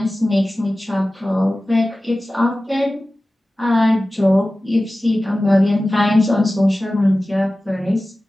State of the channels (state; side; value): normal; both; correlation 0.96